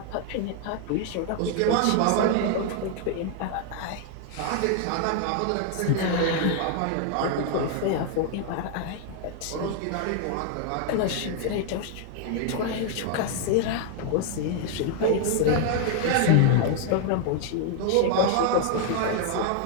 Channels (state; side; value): different; both; correlation 0.00